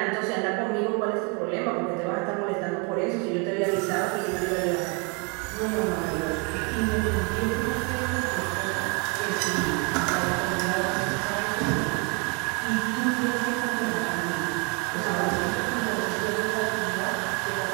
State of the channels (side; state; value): left; quieter; 33.3 dB